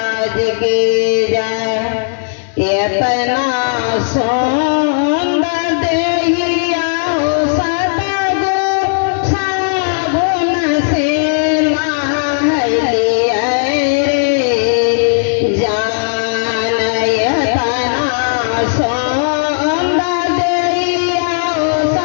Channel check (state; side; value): silent; right; digital silence